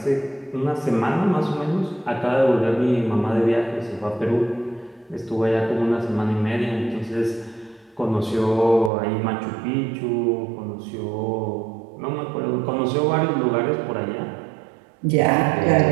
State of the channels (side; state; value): left; drops out; at 8.9 s